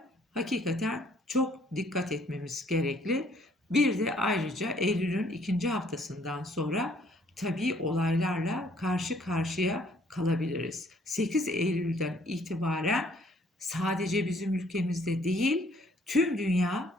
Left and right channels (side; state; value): both; normal; correlation 0.63